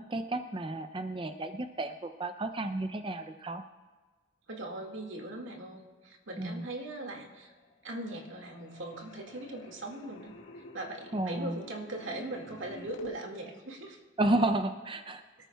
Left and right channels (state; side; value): normal; both; correlation 0.48